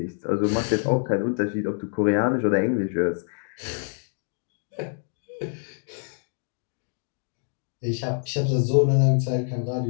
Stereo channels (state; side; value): silent; right; 61 dB below the other